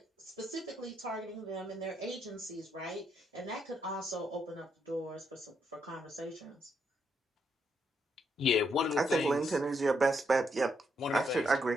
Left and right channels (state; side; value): normal; both; correlation 0.77